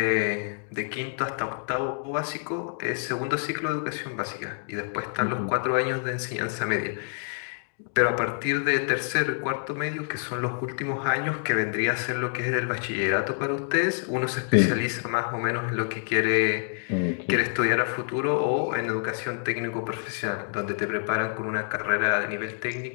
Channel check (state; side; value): silent; right; 60 dB below the other